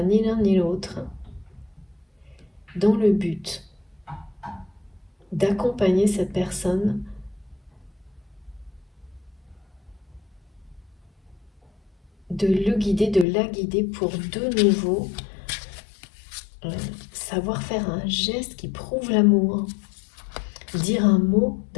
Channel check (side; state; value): right; drops out; at 13.2 s